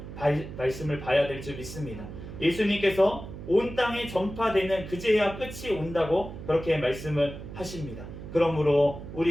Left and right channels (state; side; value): noise; right; hum, 11 dB below the sound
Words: 말씀을 봐야 될 줄 믿습니다. 예수님께서 온 땅에 전파되는 그제야 끝이 온다고 그렇게 말씀을 하십니다. 그러므로